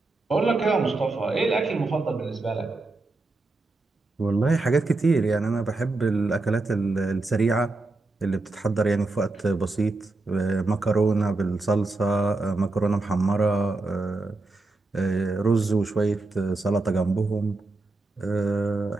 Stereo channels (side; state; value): left; quieter; 3.3 dB